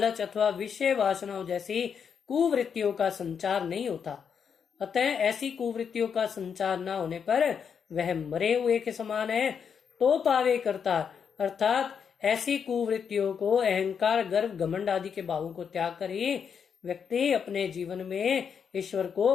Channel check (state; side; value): quieter; right; 7.0 dB